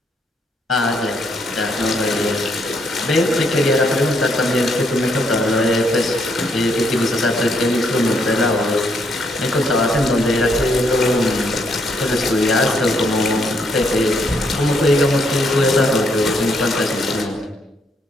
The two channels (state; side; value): normal; both; correlation 0.73